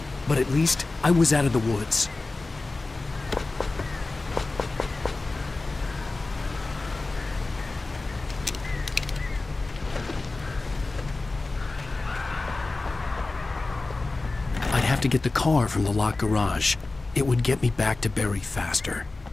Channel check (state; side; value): quieter; right; 3.4 dB